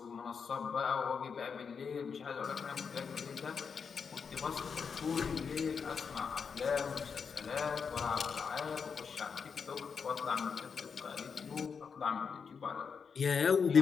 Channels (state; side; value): quieter; right; 6.0 dB